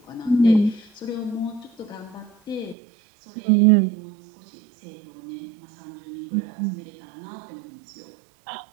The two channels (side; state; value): left; drops out; at 2.8 s